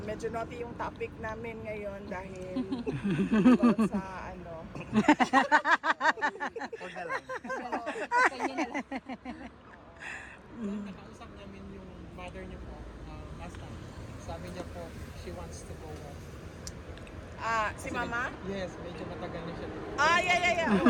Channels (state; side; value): identical; both; correlation 1.00